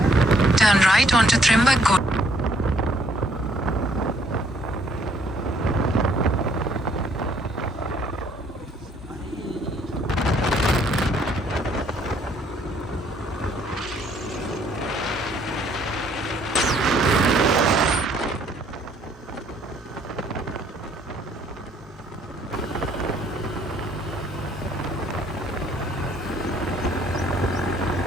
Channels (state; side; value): normal; both; correlation 0.64